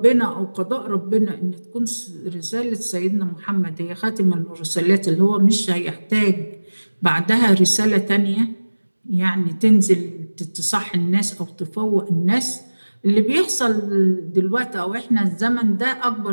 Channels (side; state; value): both; inverted; correlation -1.00